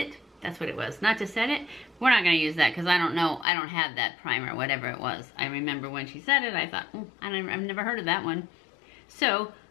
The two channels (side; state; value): right; drops out; at 3.5 s